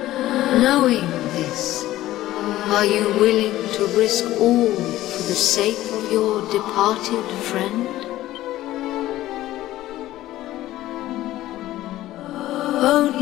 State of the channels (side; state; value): right; quieter; 15.2 dB